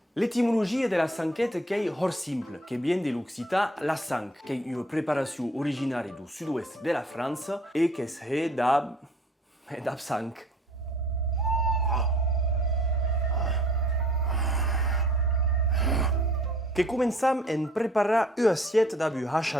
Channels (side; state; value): both; normal; correlation 0.55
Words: L'étymologie de la sanquette est hors simple, qui vient de l'occitan la sang, qui est une préparation originaire du sud-ouest de la France et qui est d'ab sang. Que començam en preparar une assiette d'ab